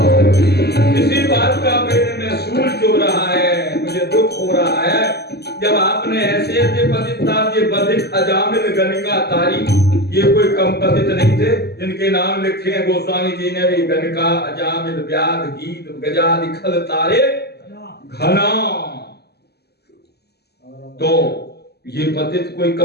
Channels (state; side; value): late; right; 0.47 ms